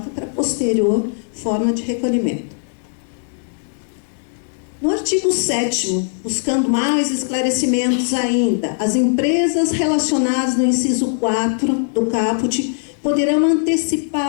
para posterior forma de recolhimento. No artigo 7º, buscando mais esclarecimentos ainda, as empresas relacionadas no inciso 4 do caput poderão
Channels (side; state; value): right; silent; 66 dB below the other